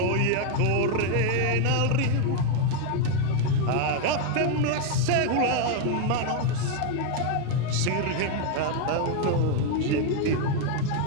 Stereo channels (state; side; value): different; both; correlation 0.01